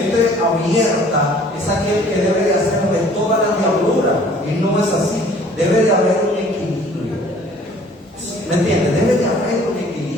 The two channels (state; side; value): normal; both; correlation 0.54